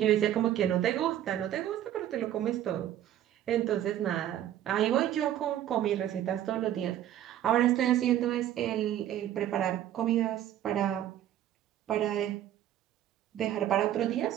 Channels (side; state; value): left; quieter; 11.7 dB